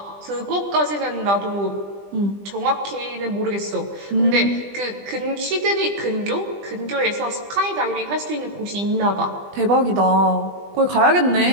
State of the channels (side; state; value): left; late; 20 ms